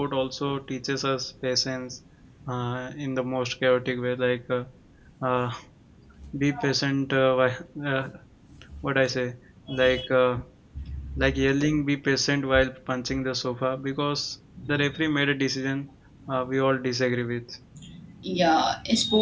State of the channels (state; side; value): identical; both; correlation 1.00